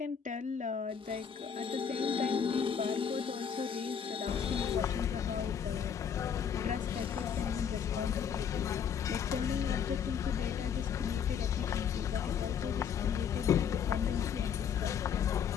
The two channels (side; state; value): right; quieter; 7.6 dB